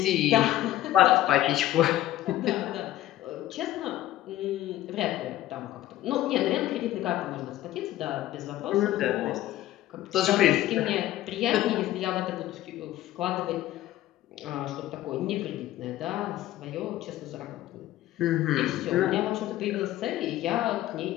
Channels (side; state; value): right; quieter; 14.4 dB